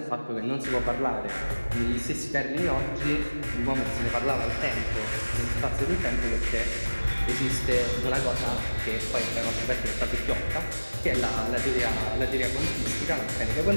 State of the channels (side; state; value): both; inverted; correlation -1.00